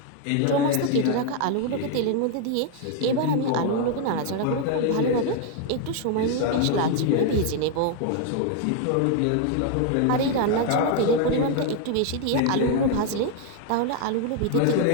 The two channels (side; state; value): both; different; correlation 0.00